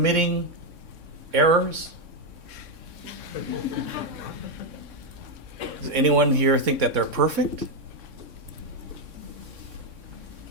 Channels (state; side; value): late; left; 3.6 ms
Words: errors? Does anyone here think that they're perfect?